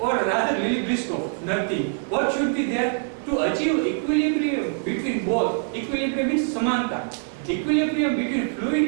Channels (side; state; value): left; silent; 63 dB below the other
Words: rather Lily Briscoe, nothing. What should be there to achieve equilibrium between both? Equilibrium means samanta. Equilibrium between